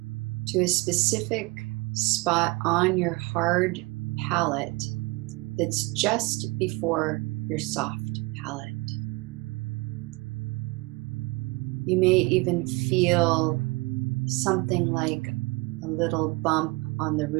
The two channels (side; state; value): left; quieter; 25.0 dB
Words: to a specific spot on your hard palate that's just before your soft palate. You may even feel something like a little bump on the